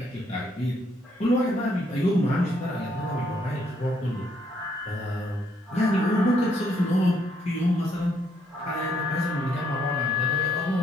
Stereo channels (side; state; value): both; normal; correlation 0.71